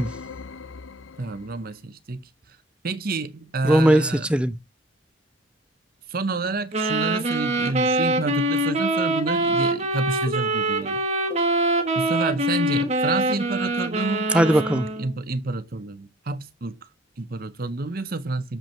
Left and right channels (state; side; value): normal; both; correlation 0.43